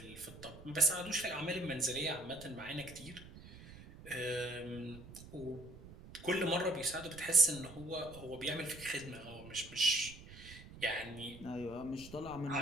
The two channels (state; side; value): noise; right; rumble, 16 dB below the sound